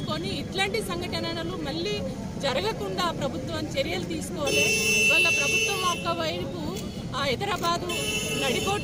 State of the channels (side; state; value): both; identical; correlation 1.00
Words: ఇట్లాంటి సంఘటనలు మళ్ళీ జరగకుండా ప్రభుత్వం చర్యలు తీసుకోవాలి. వాళ్ళ ప్రభుత్వం ఒకవైపు హైదరాబాదు